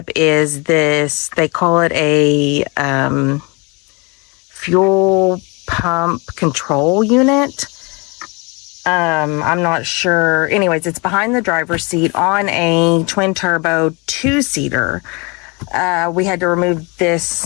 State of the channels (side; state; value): right; quieter; 29.1 dB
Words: is this, they call it a fuel pump control unit. I'm not sure. Anyways, it's behind the driver's seat on a twin turbo 2-seater. We had to remove this